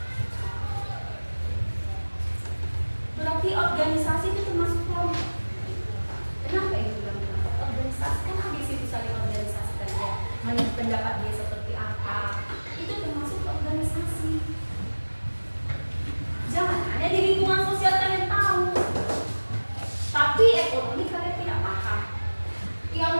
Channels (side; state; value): both; inverted; correlation -1.00